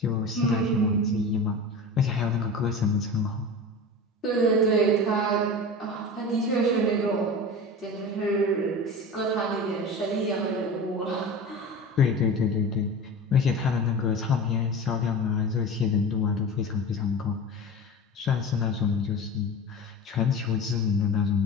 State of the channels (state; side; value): normal; both; correlation 0.31